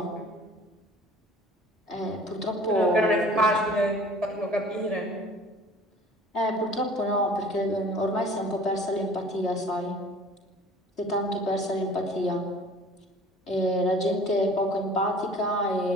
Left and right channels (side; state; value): both; normal; correlation 0.48